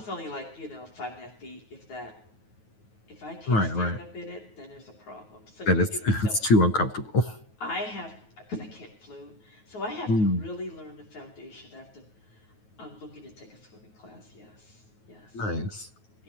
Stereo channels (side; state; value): right; late; 9.3 ms